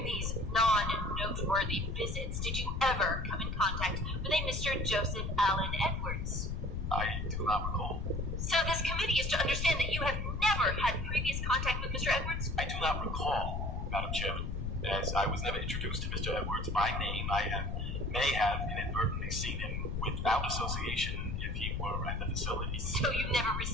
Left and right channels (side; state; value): left; noise; rumble, 2 dB below the sound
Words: these non-noteworthy visits, did you ever come in contact with a Mr. Joseph Allen Edwards? I do not recall. So this committee is to understand that you have never had previous contact with Mr. Edwards? I do not recall, Madam Chairman, as I was never introduced to Mr. Edwards by name. I may have inadvertently seen him without association if he were at the facility. So you never